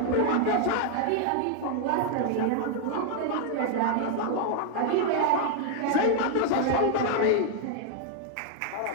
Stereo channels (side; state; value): both; different; correlation 0.00